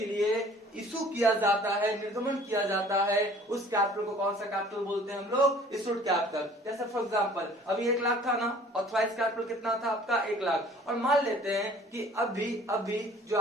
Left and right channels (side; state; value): both; normal; correlation 0.51